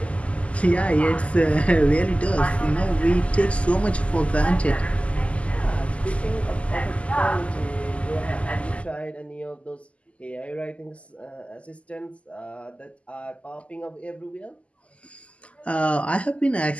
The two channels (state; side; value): late; right; 0.062 ms